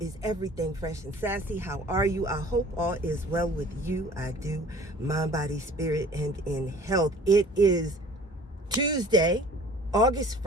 Everything Fresh and Sassy. How are you? I hope all is well with you. I do. Mind, body, spirit, and in health. It is Tuesday, August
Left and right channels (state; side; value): normal; both; correlation 0.48